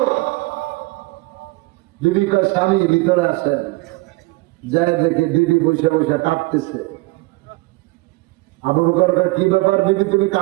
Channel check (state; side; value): quieter; left; 22.6 dB